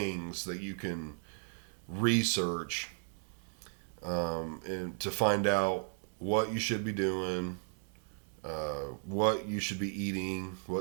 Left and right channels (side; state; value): left; silent; 54 dB below the other